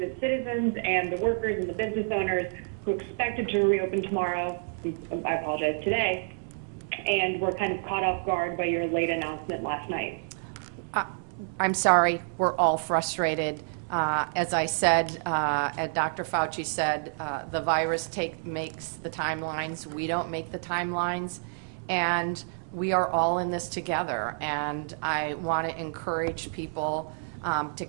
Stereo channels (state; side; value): silent; left; 59 dB below the other